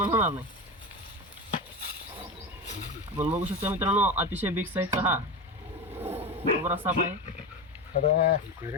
होणार नाही. आपण बघू शकता मित्रांनो, अतिशय बिग साईजचा हा कोब्रा साप आहे.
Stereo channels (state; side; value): normal; both; correlation 0.21